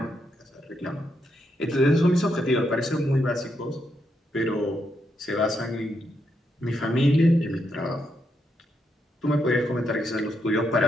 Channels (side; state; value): both; normal; correlation 0.80